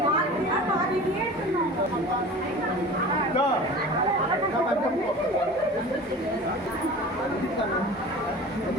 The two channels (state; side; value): normal; both; correlation 0.38